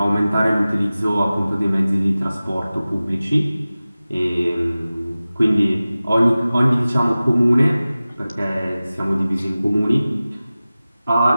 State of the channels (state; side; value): inverted; both; correlation -0.97